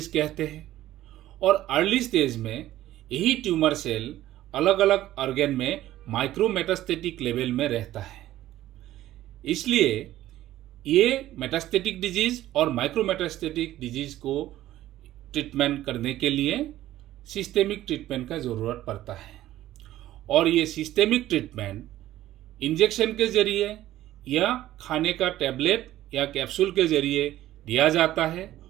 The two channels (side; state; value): left; quieter; 14.3 dB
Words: कहते हैं, और अर्ली स्टेज में यही ट्यूमर सेल अलग अलग ऑर्गन में माइक्रो मेटास्टेटिक लेवल में रहता है। इसलिए ये मेटास्टेटिक डिजीज़ और माइक्रो मेटास्टेटिक डिजीज़ को ट्रीटमेंट करने के लिए सिस्टेमिक ट्रीटमेंट का ज़रूरत पड़ता है, और ये सिस्टेमिक ट्रीटमेंट इंजेक्शन के ज़रिए या खाने का टैबलेट या कैप्सूल के ज़रिए दिया जाता है,